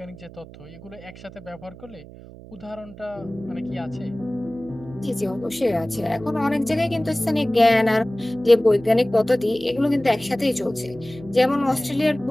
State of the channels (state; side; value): noise; right; hum, 17 dB below the sound